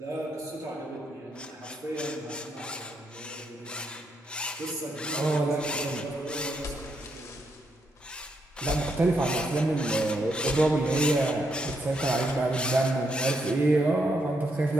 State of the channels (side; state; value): both; normal; correlation 0.78